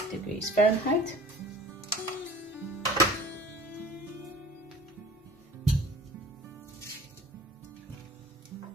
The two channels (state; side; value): normal; both; correlation 0.46